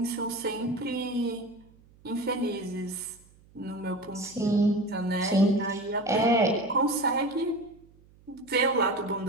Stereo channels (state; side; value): noise; right; hum, 28 dB below the sound